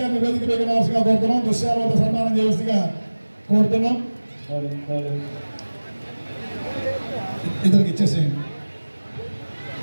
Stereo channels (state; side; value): inverted; both; correlation -1.00